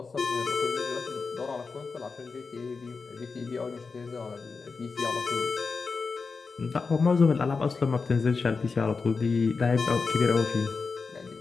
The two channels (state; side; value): quieter; right; 4.6 dB